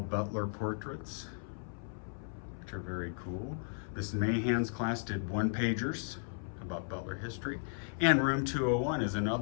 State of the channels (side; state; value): right; silent; 54 dB below the other